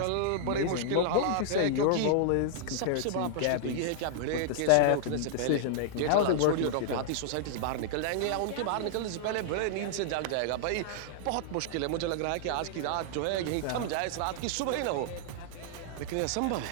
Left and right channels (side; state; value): both; different; correlation -0.01